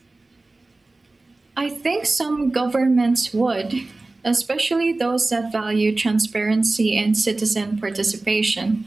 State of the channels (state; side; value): quieter; left; 3.2 dB